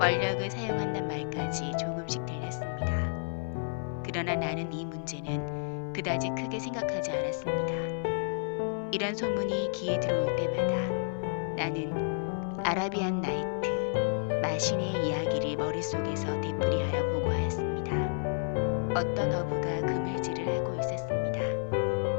사용한단 말까지 조금씩 들렸습니다. 그러나 나는 이 문제는 그다지 크게 생각하지 않았습니다. 이런 소문이 귀에 들어올 때마다 나는 아라비안 나이트, 마신의 이야기를 머릿속에서 되풀이하여 보고하였습니다. 어떤 어부가 그물질을 하고 있었습니다.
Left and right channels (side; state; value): right; silent; digital silence